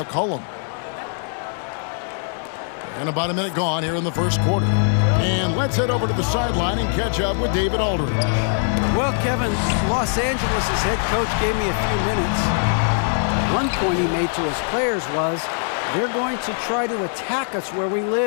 And about a minute gone here in the first quarter. And let's head over to the sideline and catch up with David Aldridge. Well, Kevin, Los Angeles' head coach gave me a few minutes. One point he made to his players was, they're going to try to attack us where we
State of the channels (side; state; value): right; silent; 64 dB below the other